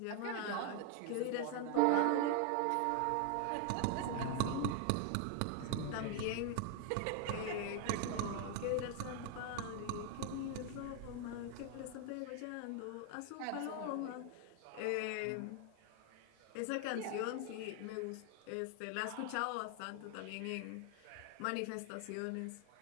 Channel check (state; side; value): different; both; correlation 0.01